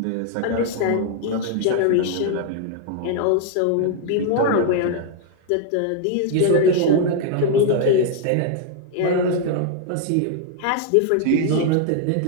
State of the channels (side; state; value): both; different; correlation 0.00